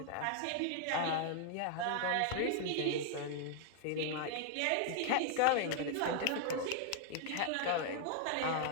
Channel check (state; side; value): different; both; correlation 0.00